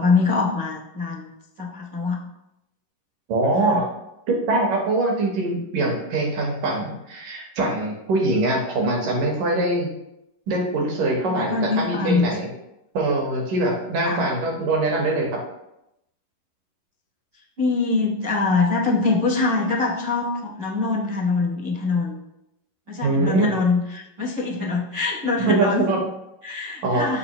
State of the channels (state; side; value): late; left; 11 ms